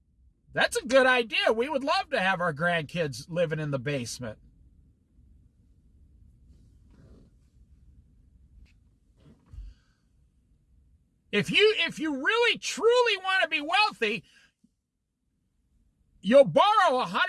that's a good idea. We would love to have our grandkids living in the basement. If you really, truly want to be wealthy, you'll borrow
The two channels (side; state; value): both; identical; correlation 1.00